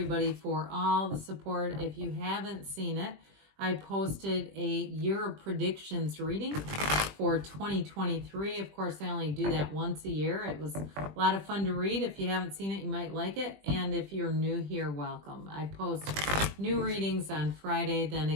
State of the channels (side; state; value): left; late; 20 ms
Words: for all the support. If you haven't seen it, I posted a year of predictions reading for 2023. Of course, I only do that once a year. It was a lot of fun to read. If you haven't seen it, you might like it. And if you're new here, welcome. I post new readings on Friday, then